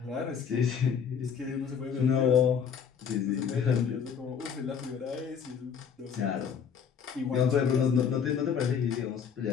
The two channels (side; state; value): right; quieter; 7.1 dB